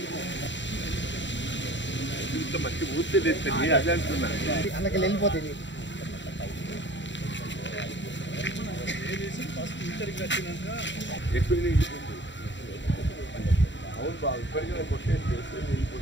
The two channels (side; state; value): right; late; 0.53 ms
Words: ఇంత మంచి ఊర్తి తెచ్చండి అదే అంటున్నా అందుకే వెళ్ళిపోతుంది ఎక్కువ వెళ్ళిపోతుంది అవును బాబు ఇప్పటికైనా కొట్టేసి